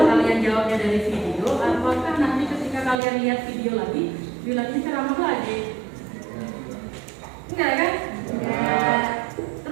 kalian jawabnya dari video, apakah nanti ketika kalian lihat video lagi, bilangnya ceramah lagi? Enggak kan? Enggak.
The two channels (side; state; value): left; drops out; at 3.0 s